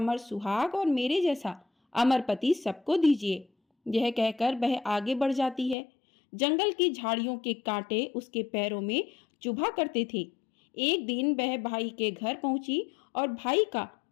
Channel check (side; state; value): right; drops out; at 5.8 s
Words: सुहाग और मेरे जैसा अमर पति सबको दीजिए। यह कहकर वह आगे बढ़ जाती है। जंगल की झाड़ियों के कांटे उसके पैरों में चुभा करते थे। एक दिन वह भाई के घर पहुंची और भाई का